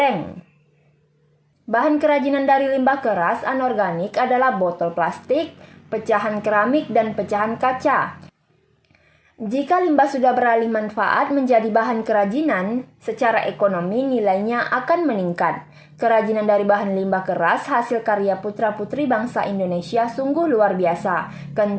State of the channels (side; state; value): both; identical; correlation 1.00